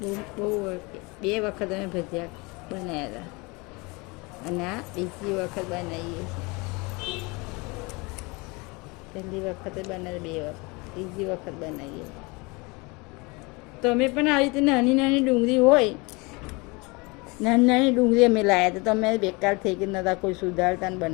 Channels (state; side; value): quieter; right; 26.9 dB